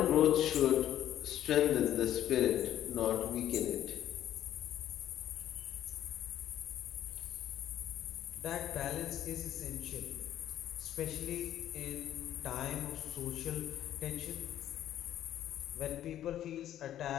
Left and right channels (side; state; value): right; quieter; 11.8 dB